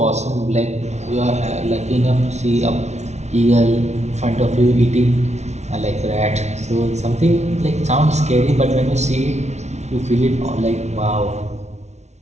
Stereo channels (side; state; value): left; late; 0.32 ms